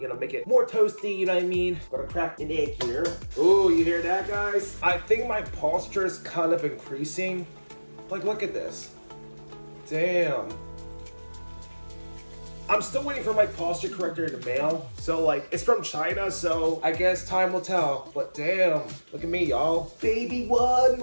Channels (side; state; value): both; inverted; correlation -1.00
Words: know, make it more toasty, you know what I mean? Gonna crack an egg here. Ooh, you hear that, guys? I think my posture is kind of increasing. Like, look at this. Damn. I'm still waiting for my posture corrector in the mail. So, like, it's from China, so I guess time will tell. But damn, look at me, y'all. Baby, one